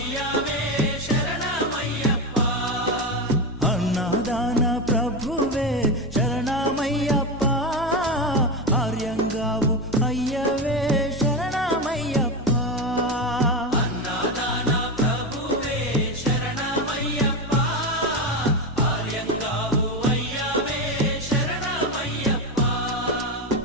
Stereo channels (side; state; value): both; normal; correlation 0.15